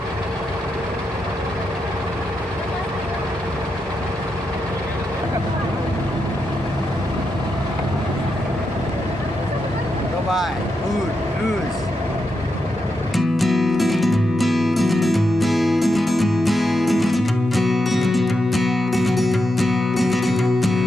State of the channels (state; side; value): normal; both; correlation 0.85